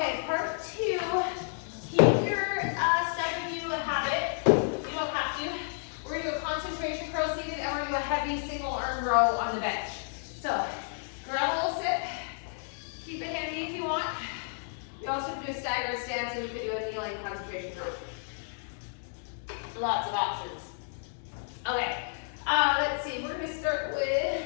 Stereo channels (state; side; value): silent; right; digital silence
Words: part 2. Keep your step if you have it. You don't have to. We're going to do a concentration curl seated, and we're going to do a heavy single arm row on the bench. So, grab a little sit. Keep it handy if you want. You also can do a staggered stance, and you can do a kneeling concentration curl. Lots of options. Okay, let's see. We're going to start